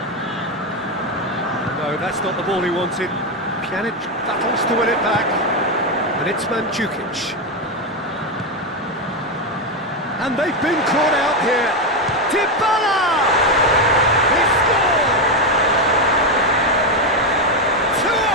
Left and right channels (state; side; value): normal; both; correlation 0.08